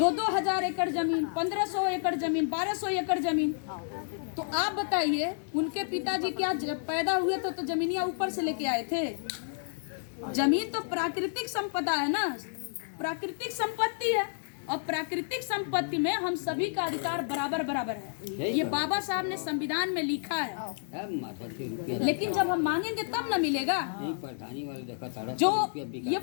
एकड़ जमीन, 1,500 एकड़ जमीन, 1,200 एकड़ जमीन। तो आप बताइए, उनके पिताजी क्या पैदा हुए तो जमीनियां ऊपर से लेके आए थे? जमीन तो प्राकृतिक संपदा है ना, प्राकृतिक संपत्ति है, और प्राकृतिक संपत्ति में हम सभी का अधिकार बराबर बराबर है। ये बाबा साहब ने संविधान में लिखा है। लेकिन जब हम मांगेंगे तब ना मिलेगा। जो ये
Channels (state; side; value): silent; right; digital silence